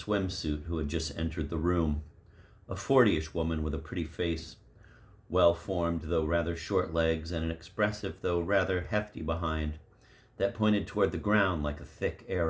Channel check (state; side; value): identical; both; correlation 1.00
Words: who had just entered the room. A 40-ish woman with a pretty face, well-formed though rather short legs, and an expressive though rather hefty behind that pointed toward the ground like a thick